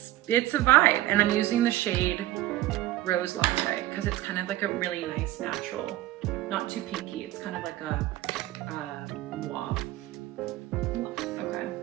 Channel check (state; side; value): quieter; left; 15.6 dB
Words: a vibe. And I'm using the shade Rose Latte because it's kind of like a really nice natural, not too pinky. It's kind of like a mauve. Okay,